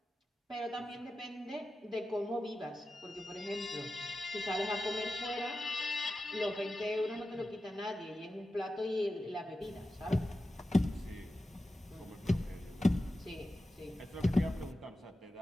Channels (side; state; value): both; normal; correlation 0.93